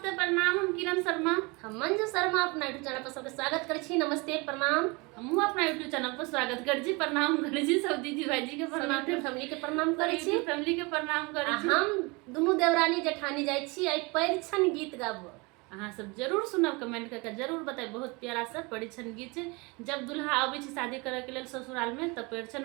प्रणाम। हम किरण शर्मा, हम मंजू शर्मा अपना यूट्यूब चैनल पर सबके स्वागत करै छी। नमस्ते प्रणाम। हमहू अपना यूट्यूब चैनल पर स्वागत कर छी। प्रणाम कर छी सब दीदी भाईजी के प्रणाम, फैमिली के प्रणाम करै छी। फैमिली के प्रणाम कर छी। हम दुनू देवरानी जेठानी जाइ छी आई परिछन गीत गाबो। अहाँ सब जरूर सुनब, कमेंट करके जरूर बताए। बहुत प्यारा सा परिछन गीत छै। जब दुल्हा आबै छै शादी करे के लेल ससुराल में तब परिछन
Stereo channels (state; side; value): quieter; left; 27.2 dB